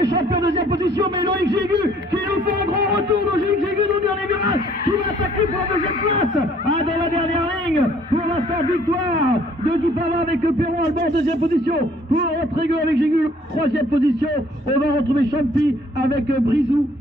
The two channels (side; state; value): both; normal; correlation 0.59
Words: champion en deuxième position, mais Loïc Jégu qui nous fait un grand retour. Loïc Jégu dans le dernier virage qui va attaquer pour la deuxième place. Ah, dans la dernière ligne, pour l'instant victoire de Guy Pava avec Perron Alban en deuxième position. Pour Rodrigo avec Jégu, troisième position. On va retrouver Champy avec Brizou